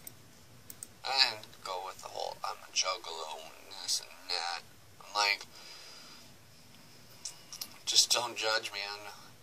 I didn't go with the whole I'm a juggalo and this and that. I'm like, just don't judge me on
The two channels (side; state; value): both; identical; correlation 1.00